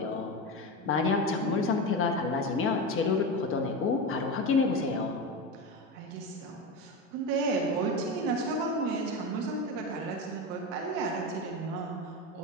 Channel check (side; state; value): both; normal; correlation 0.20